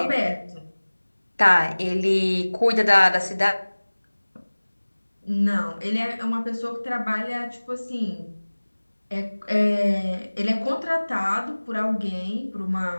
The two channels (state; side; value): inverted; both; correlation -1.00